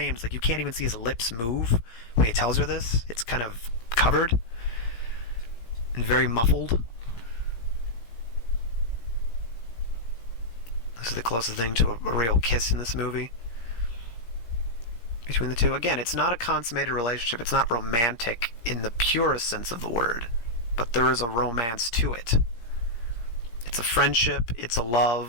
it's like you can't even see his lips move when he tells her this. It's kind of covered and very muffled. This is the closest thing to a real kiss in this movie between the two. Again, it's not a consummated relationship. It's not romantic in the purest sense of the word, but there is a romance to it. It's a friendship, it's a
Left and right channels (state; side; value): late; right; 17 ms